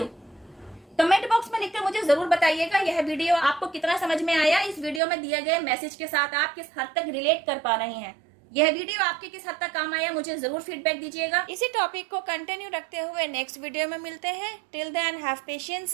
कमेंट बॉक्स में लिखकर मुझे जरूर बताइएगा यह वीडियो आपको कितना समझ में आया। इस वीडियो में दिए गए मैसेज के साथ आप किस हद तक रिलेट कर पा रहे हैं, यह वीडियो आपके किस हद तक काम आया, मुझे जरूर फीडबैक दीजिएगा। इसी टॉपिक को कंटिन्यू रखते हुए नेक्स्ट वीडियो में मिलते हैं। Till then have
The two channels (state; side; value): drops out; left; at 5.0 s